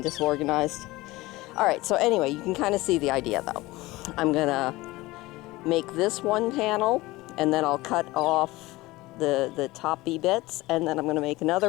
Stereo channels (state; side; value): quieter; right; 19.9 dB